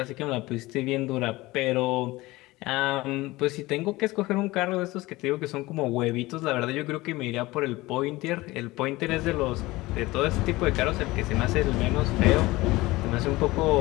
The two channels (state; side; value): quieter; right; 19.9 dB